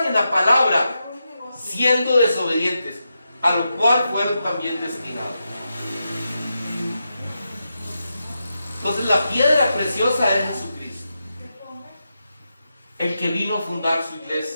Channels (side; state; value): both; inverted; correlation -0.87